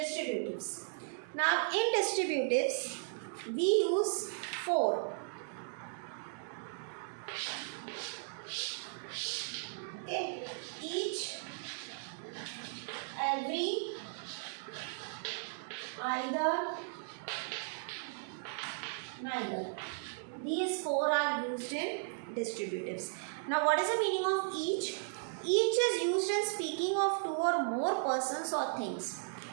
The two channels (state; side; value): silent; left; digital silence